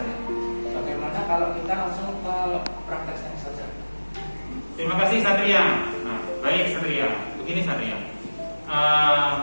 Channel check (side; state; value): both; inverted; correlation -1.00